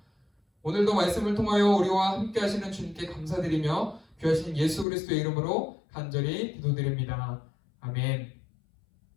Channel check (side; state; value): right; drops out; at 4.9 s